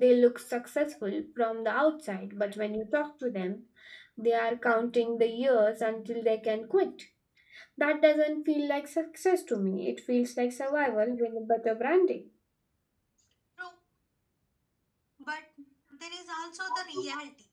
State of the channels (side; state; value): both; identical; correlation 1.00